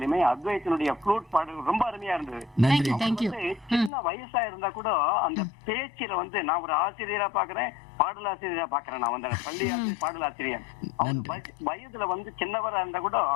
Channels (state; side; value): drops out; right; at 3.9 s